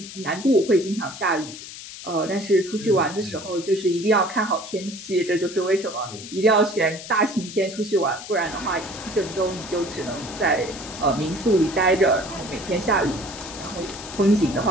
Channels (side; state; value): left; noise; hiss, 13 dB below the sound